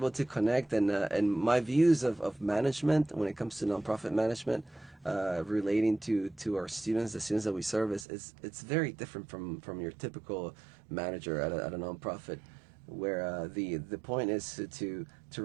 to connect, and my views of management when it comes to nonprofit management, relating to our students, the students that we serve, it's very different from your typical manager at a nonprofit, where the point is to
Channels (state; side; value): drops out; left; at 8.1 s